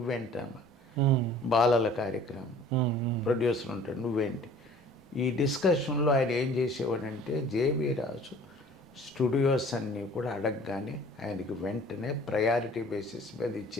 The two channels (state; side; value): normal; both; correlation 0.49